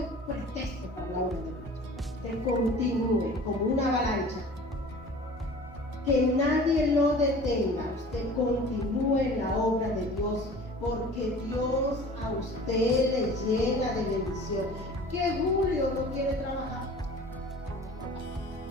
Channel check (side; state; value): both; normal; correlation 0.44